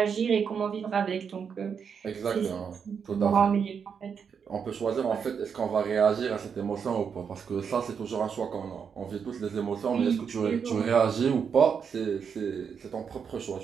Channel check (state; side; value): quieter; left; 6.7 dB